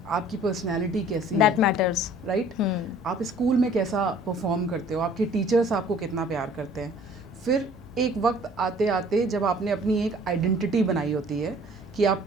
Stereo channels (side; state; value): both; normal; correlation 0.53